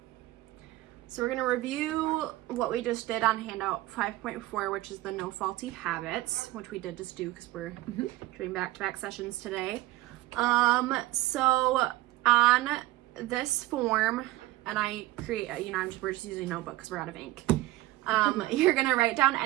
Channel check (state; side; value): quieter; left; 17.4 dB